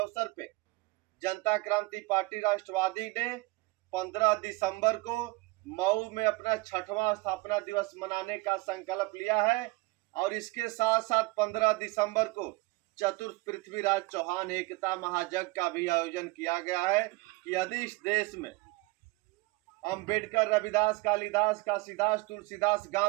पे जनता क्रांति पार्टी राष्ट्रवादी ने 15 दिसंबर को मऊ में अपना 6वां स्थापना दिवस मनाने का संकल्प लिया है और इसके साथ साथ 15 दिसंबर को चतुर्थ पृथ्वीराज चौहान एकता महायज्ञ का भी आयोजन किया गया है कि यदि इस देश में अंबेडकर, रविदास, कालिदास, काशीदास, तुलसीदास,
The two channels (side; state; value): left; quieter; 23.2 dB